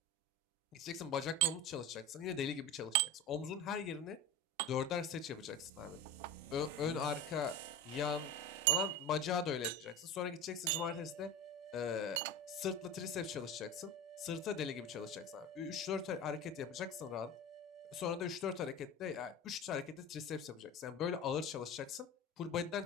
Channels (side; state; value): both; normal; correlation 0.28